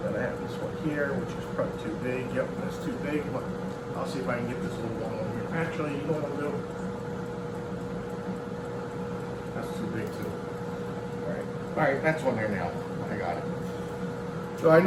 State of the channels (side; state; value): both; identical; correlation 1.00